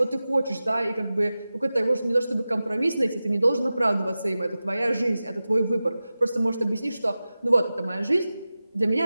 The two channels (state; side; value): inverted; both; correlation -0.95